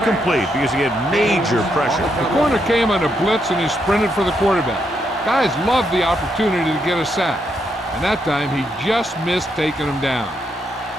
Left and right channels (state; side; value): normal; both; correlation 0.79